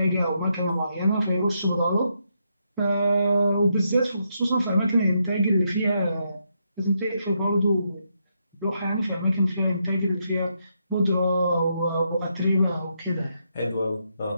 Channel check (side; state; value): both; inverted; correlation -0.79